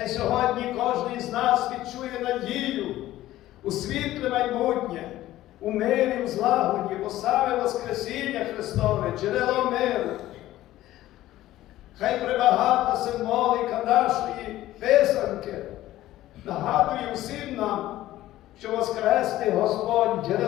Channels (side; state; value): right; quieter; 14.9 dB